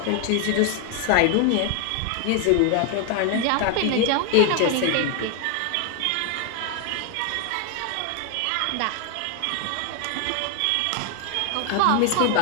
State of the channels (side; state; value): both; different; correlation 0.00